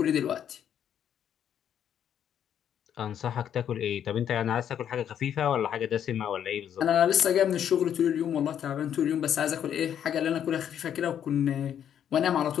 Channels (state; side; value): quieter; right; 9.4 dB